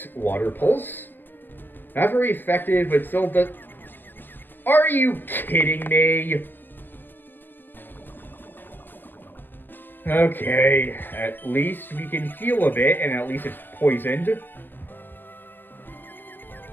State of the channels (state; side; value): late; right; 0.090 ms